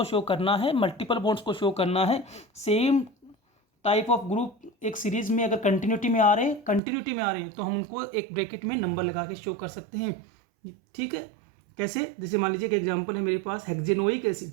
शो करना है, मल्टीपल बॉन्ड्स को शो करना है। सेम टाइप ऑफ ग्रुप एक सीरीज में अगर कंटिन्यूटी में आ रहे हैं तो हम उनको एक ब्रैकेट में नंबर लगा के शो कर सकते हैं। ठीक है, कैसे, जैसे मान लीजिए एक एग्जांपल है मेरे पास हेक्जेनोइक एसिड,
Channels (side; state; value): left; drops out; at 6.8 s